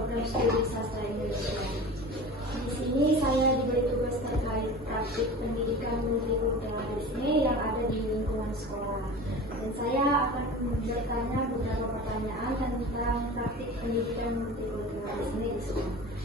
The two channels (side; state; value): both; normal; correlation 0.35